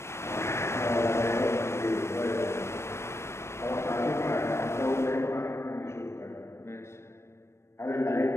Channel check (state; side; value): late; right; 0.13 ms